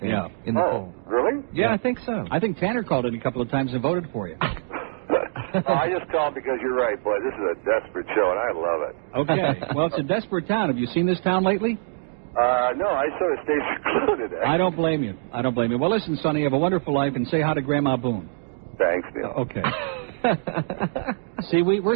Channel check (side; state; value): left; silent; digital silence